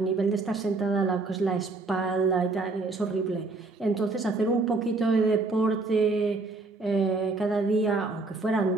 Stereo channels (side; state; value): left; quieter; 3.5 dB